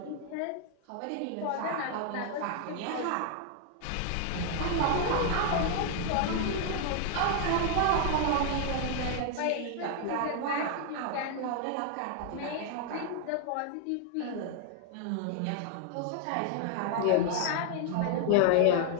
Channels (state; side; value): different; both; correlation 0.00